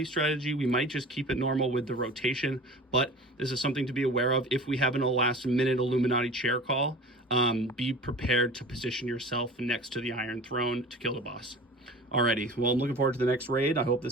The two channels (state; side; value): normal; both; correlation 0.39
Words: strategy. We might just keep it normal with the rotation, but this is something to be aware of. If we have a last minute Illuminati chair call, be prepared to position yourself next to the Iron Throne to kill the boss. Alrighty, well, I'm looking forward to the next raid. I hope